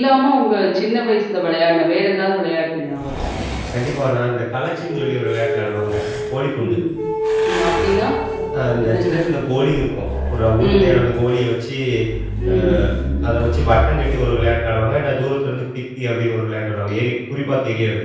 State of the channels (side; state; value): both; identical; correlation 1.00